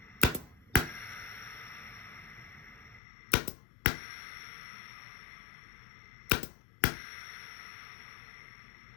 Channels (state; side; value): drops out; right; at 3.0 s